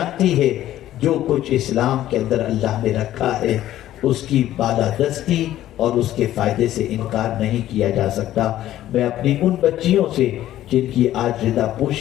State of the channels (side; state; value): right; quieter; 13.3 dB